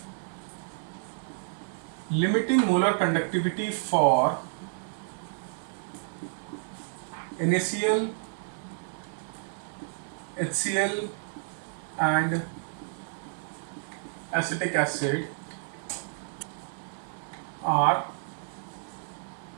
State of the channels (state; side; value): silent; left; digital silence